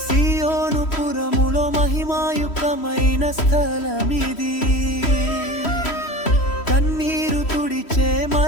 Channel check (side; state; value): right; late; 3.1 ms